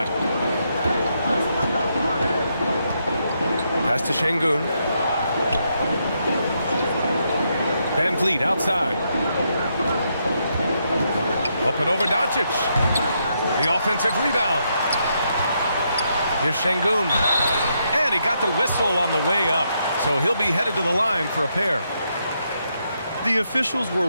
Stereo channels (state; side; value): inverted; both; correlation -0.79